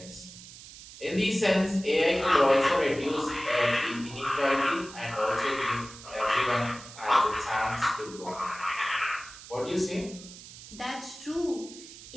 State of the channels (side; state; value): right; noise; hiss, 16 dB below the sound